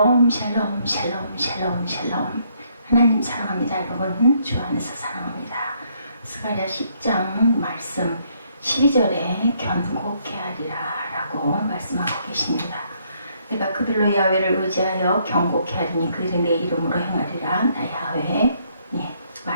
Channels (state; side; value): inverted; both; correlation -0.70